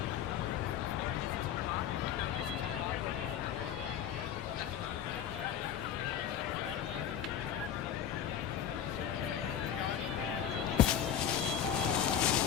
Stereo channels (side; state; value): right; quieter; 9.3 dB